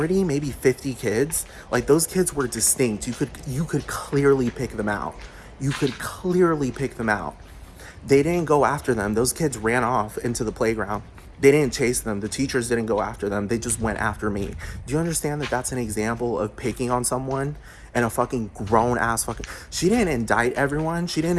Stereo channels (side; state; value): both; identical; correlation 1.00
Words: maybe 50 kids. Like, those kids were distinct. You could clearly pick them out. You could clearly pick them out. They didn't go after them. Those kids ran off into the playground. They didn't chase them. The teachers didn't go after them. They just went after me. Do you understand that that's an example of picking on someone? And a fucking grown-ass fucking... She didn't indict everyone. She didn't